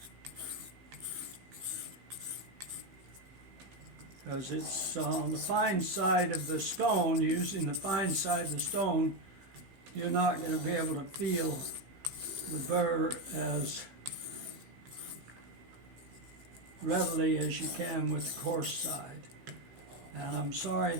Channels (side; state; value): left; late; 16 ms